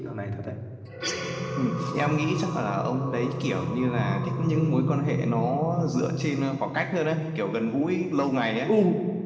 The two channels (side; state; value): both; identical; correlation 1.00